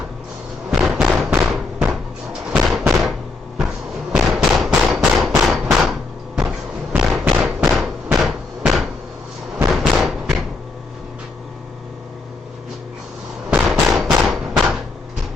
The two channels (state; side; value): quieter; right; 3.7 dB